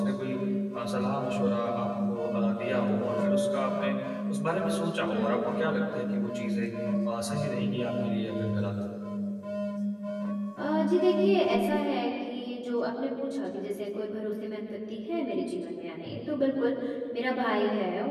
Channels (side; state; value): both; identical; correlation 1.00